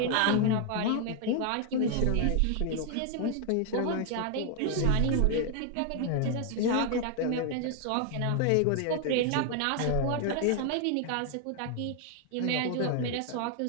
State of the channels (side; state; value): both; different; correlation 0.00